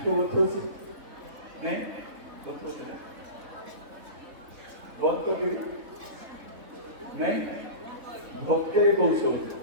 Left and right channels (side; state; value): left; late; 3.6 ms